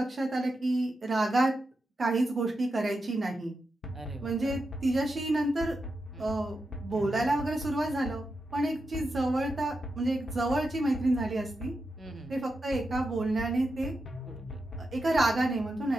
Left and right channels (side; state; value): both; normal; correlation 0.88